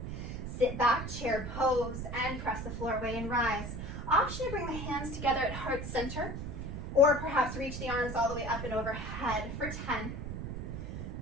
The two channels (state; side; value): noise; right; rumble, 6 dB below the sound